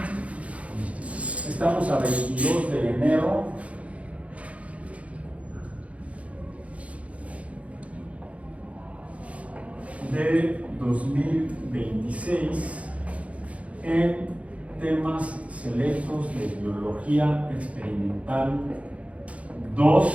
Estamos a 22 de enero de 2026 en temas selectos de biología experimental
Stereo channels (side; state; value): left; late; 0.065 ms